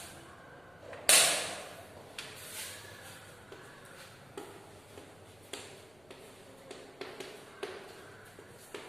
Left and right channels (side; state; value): left; noise; rumble, 27 dB below the sound